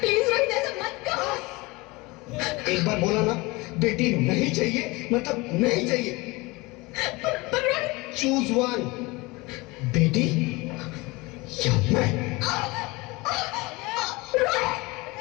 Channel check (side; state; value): right; quieter; 23.6 dB